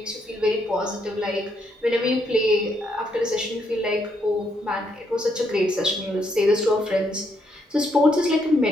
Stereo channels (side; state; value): both; normal; correlation 0.75